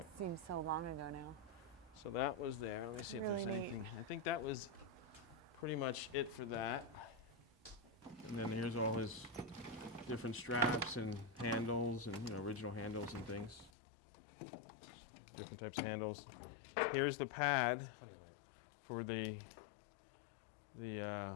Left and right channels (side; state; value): right; drops out; at 13.7 s